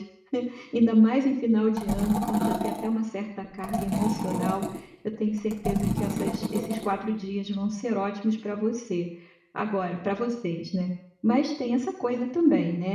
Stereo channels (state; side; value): identical; both; correlation 1.00